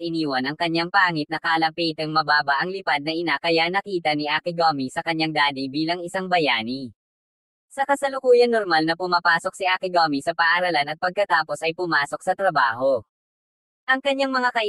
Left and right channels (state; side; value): identical; both; correlation 1.00